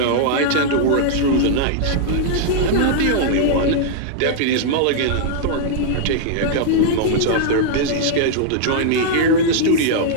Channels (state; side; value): different; both; correlation -0.01